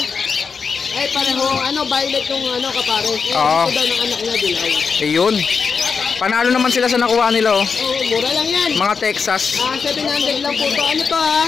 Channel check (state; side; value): quieter; right; 5.5 dB